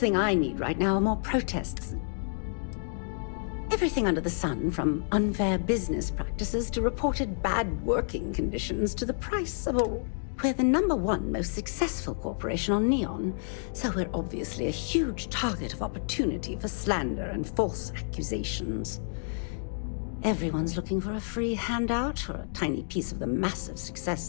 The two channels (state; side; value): silent; right; digital silence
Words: I need right now are more protests. Everything under the sun, from unfair business practices to reported bad working conditions to the price of a... We're the #1 most successful corporation on Neon, so we're obviously a huge target of opportunity for slander and false accusations. Everyone's looking for a free handout or a tiny piece of the massive success